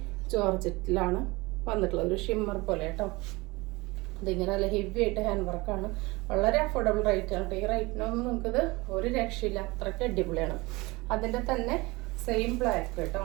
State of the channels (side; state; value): left; quieter; 22.9 dB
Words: ജോർജറ്റിലാണ് വന്നിട്ടുള്ളത്. ഒരു ഷിമ്മർ പോലെ കേട്ടോ. ഇതിങ്ങനെ നല്ല ഹെവി ആയിട്ട് ഹാൻഡ് വർക്കാണ്. വളരെ അഫോർഡബിൾ റേറ്റ് ആണ്. ഈ റേറ്റിനൊന്നും നമുക്കിത് ഒരു രക്ഷയില്ല. അത്രയ്ക്ക് അടിപൊളിയാണ്. അതിൻ്റെ തന്നെ സെയിം ബ്ലാക്ക് കേട്ടോ.